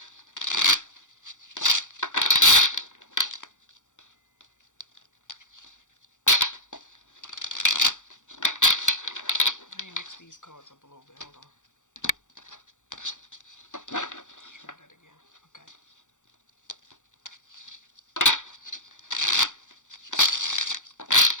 Let me mix these cards up a little bit. Hold on. Try that again. Okay.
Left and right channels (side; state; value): right; late; 0.86 ms